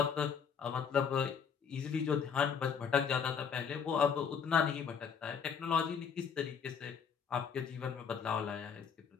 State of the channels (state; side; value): quieter; right; 6.7 dB